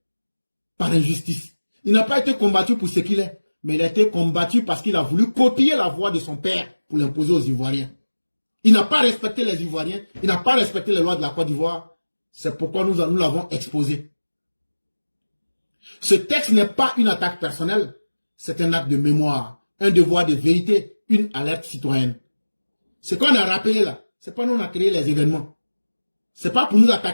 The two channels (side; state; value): both; inverted; correlation -1.00